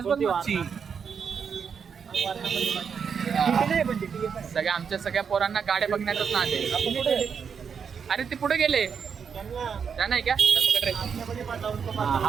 सगळ्या आमच्या सगळ्या पोरांना गाड्या बघण्यातच ना. अरे ते पुढे गेले. त्या नाही का?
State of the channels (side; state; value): left; quieter; 6.6 dB